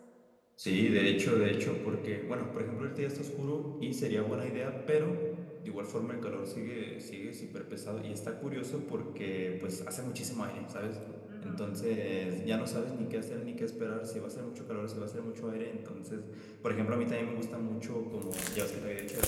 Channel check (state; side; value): identical; both; correlation 1.00